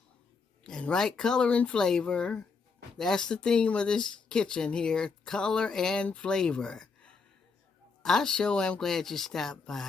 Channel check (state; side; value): quieter; right; 4.8 dB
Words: and write color and flavor. That's the theme of this kitchen here, color and flavor. I sure am glad you stopped